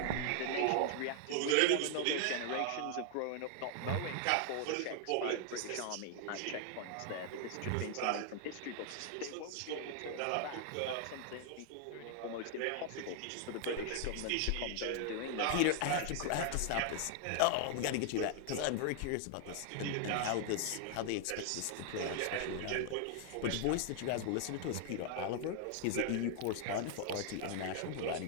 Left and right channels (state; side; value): different; both; correlation 0.00